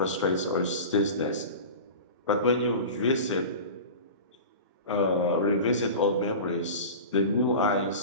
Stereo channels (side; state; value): both; inverted; correlation -0.33